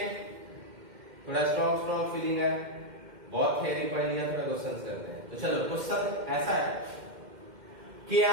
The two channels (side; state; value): left; late; 2.1 ms